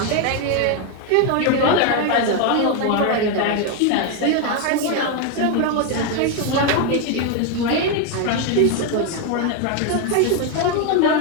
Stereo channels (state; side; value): different; both; correlation 0.01